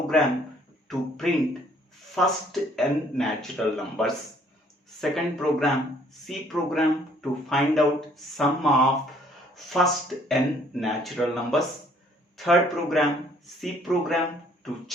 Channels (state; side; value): normal; both; correlation 0.61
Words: to print first n natural numbers. Second program, C program to find out sum of first n natural numbers. Third program, C program to